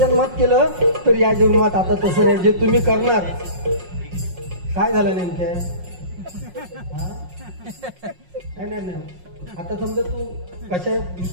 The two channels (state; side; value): late; left; 5.5 ms